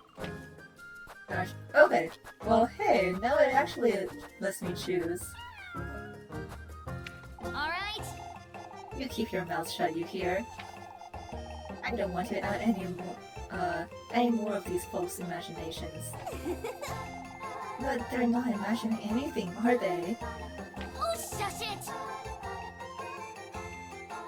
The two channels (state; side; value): identical; both; correlation 1.00